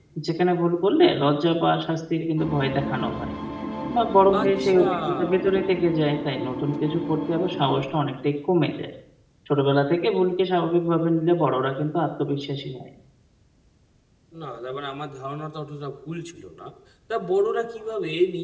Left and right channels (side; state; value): both; identical; correlation 1.00